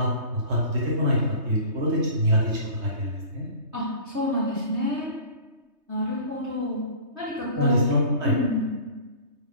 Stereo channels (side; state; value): left; late; 3.2 ms